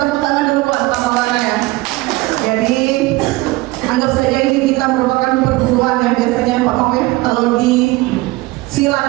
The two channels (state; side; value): quieter; left; 20.4 dB